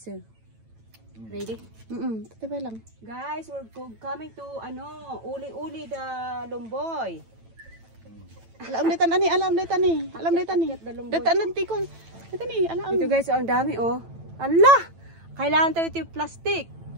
Ready? Tatibay lang. Guys, we're coming to uli-uli the Lumboy. Alam na tani. Datan nanti ko. Tani, alam. Ito guys, ang dami oh. Allah! Kailangan tayo ito yung plastic.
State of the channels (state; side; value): late; left; 9.0 ms